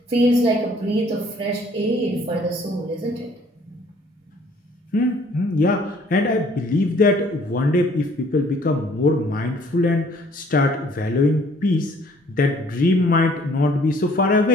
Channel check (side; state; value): both; normal; correlation 0.58